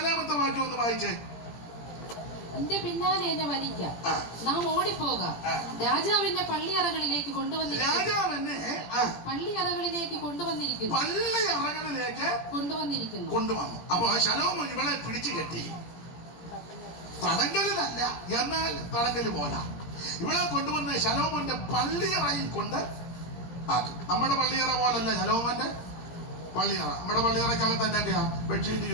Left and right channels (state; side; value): late; right; 17 ms